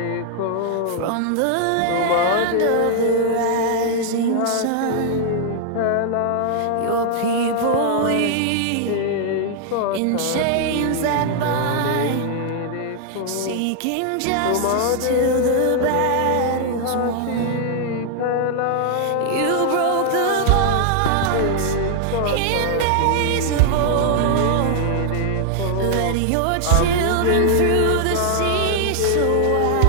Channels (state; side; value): different; both; correlation 0.00